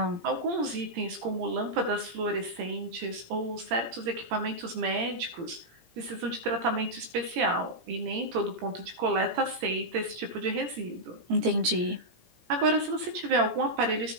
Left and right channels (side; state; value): left; late; 17 ms